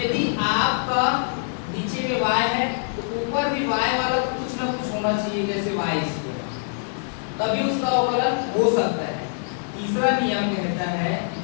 आपका नीचे में y है तो ऊपर भी y वाला कुछ ना कुछ होना चाहिए, जैसे y², तभी उसका अवकलन हो सकता है। तीसरा नियम कहता है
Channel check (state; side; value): silent; right; digital silence